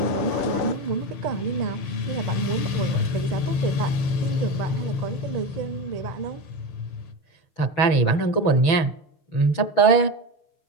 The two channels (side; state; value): right; late; 6.1 ms